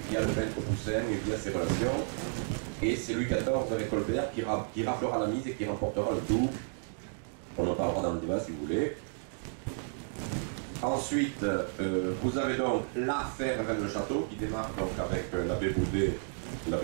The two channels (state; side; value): silent; left; digital silence